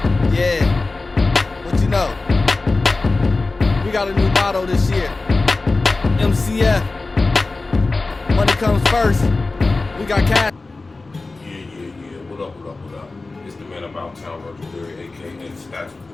What you know? We got a new motto this year. MCF. Money comes first. We got cash. Yeah. What up? It's the man about town, Virgil Berry, aka Stats with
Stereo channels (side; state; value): right; quieter; 3.5 dB